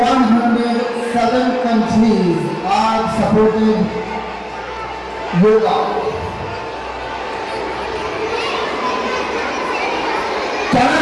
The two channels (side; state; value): both; identical; correlation 1.00